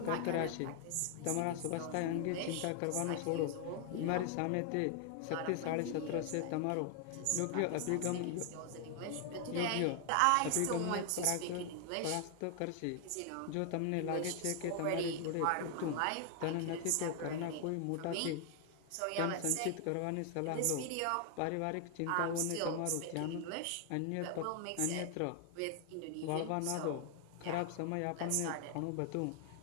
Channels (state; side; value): different; both; correlation 0.00